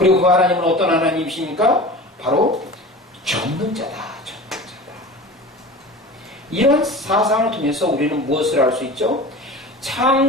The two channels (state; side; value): normal; both; correlation 0.35